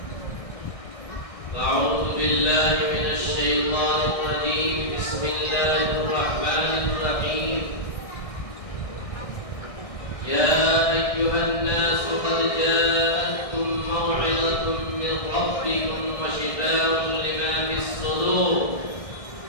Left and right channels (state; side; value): late; right; 1.6 ms